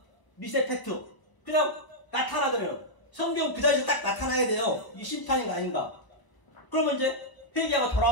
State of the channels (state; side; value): late; right; 1.0 ms